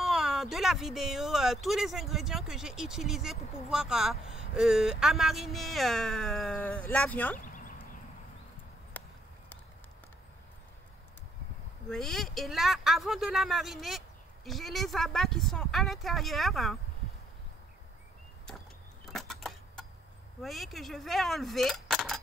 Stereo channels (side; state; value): both; normal; correlation 0.70